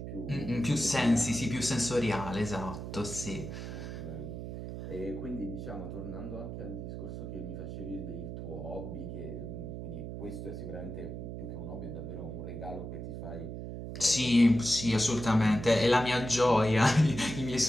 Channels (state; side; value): noise; right; hum, 7 dB below the sound